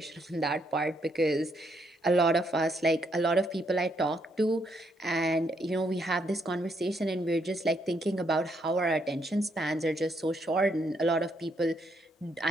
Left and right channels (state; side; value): normal; both; correlation 0.74